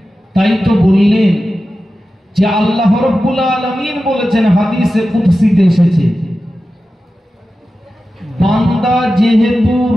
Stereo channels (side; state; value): both; normal; correlation 0.93